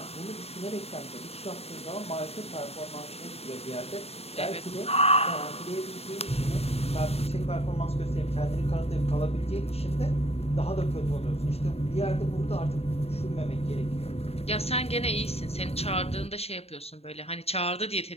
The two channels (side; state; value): right; late; 0.29 ms